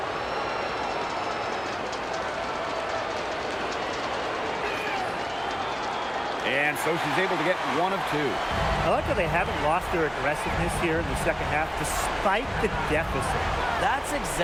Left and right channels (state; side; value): identical; both; correlation 1.00